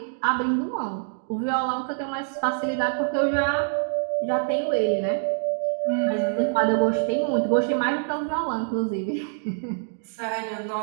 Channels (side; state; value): left; silent; digital silence